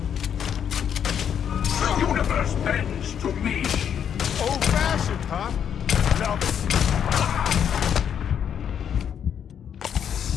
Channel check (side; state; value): right; quieter; 8.5 dB